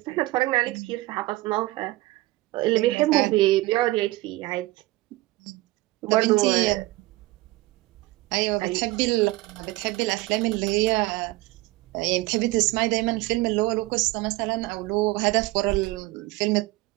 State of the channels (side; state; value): left; quieter; 20.0 dB